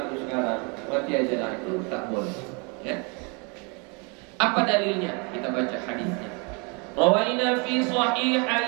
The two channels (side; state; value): left; quieter; 32.6 dB